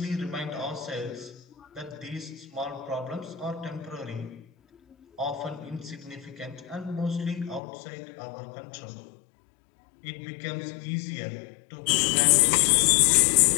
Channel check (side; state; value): right; drops out; at 7.6 s